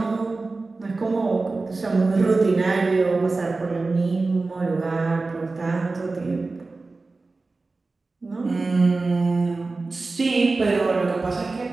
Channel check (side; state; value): left; quieter; 3.6 dB